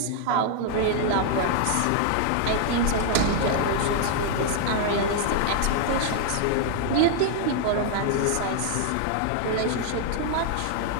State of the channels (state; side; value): different; both; correlation 0.00